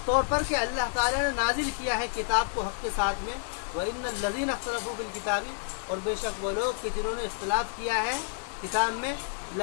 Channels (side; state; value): right; silent; digital silence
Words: طور پر کہ اللہ تعالیٰ نے نازل کیا ہے کتاب کو حق کے ساتھ میں. وَإِنَّ الَّذِينَ اخْتَلَفُوا فِي الْكِتَابِ اور بے شک وہ لوگ کہ جنہوں نے اختلاف کیا ہے کتاب میں،